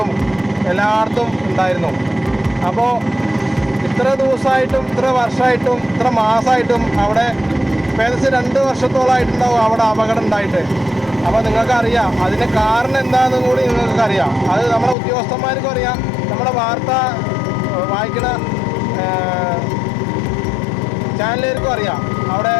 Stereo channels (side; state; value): right; drops out; at 15.0 s